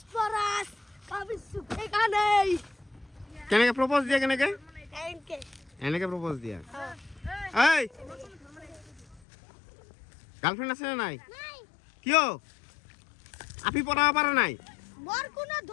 কবি সুখে গানেই। কেনেকে প্রপোজ দিয়া কেনেকে? এনকে। এনেকে প্রপোজ দিয়া। হ্যাঁ। এই গার্লফ্রেন্ড আছে না নাই? নাই। কিয়? আপি পড়াবা পারে নাই? মোর কোনো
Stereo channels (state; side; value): drops out; right; at 9.2 s